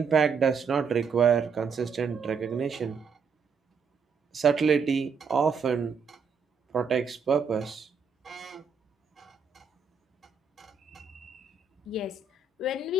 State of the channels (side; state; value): left; quieter; 5.7 dB